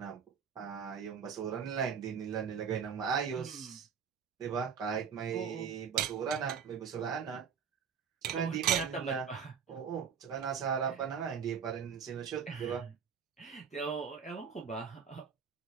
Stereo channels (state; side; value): quieter; left; 7.1 dB